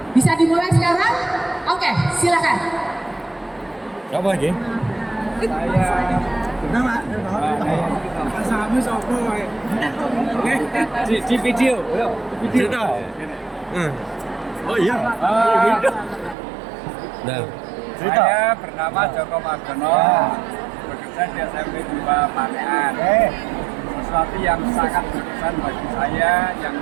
Bisa dimulai sekarang? Oke, silakan. Apa lagi? Di video. Cerita. Oh iya. Nah, cerita. Saya bernama Joko Margono, bekerja di SMP 2 Panean. Sesuatu yang sangat berkesan bagi saya, yang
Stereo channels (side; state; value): left; drops out; at 16.4 s